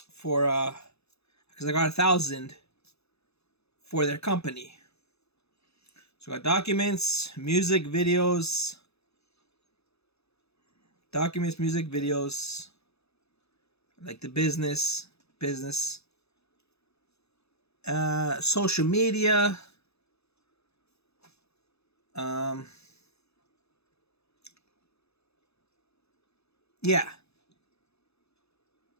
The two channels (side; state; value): right; late; 0.79 ms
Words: for because I got 1,000 for their company. So I got documents, music, videos, music, videos, like the business, social media, yeah.